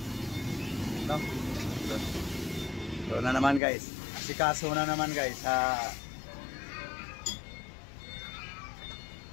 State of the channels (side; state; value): right; drops out; at 3.6 s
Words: No? So na naman guys. Asikaso na naman guys sa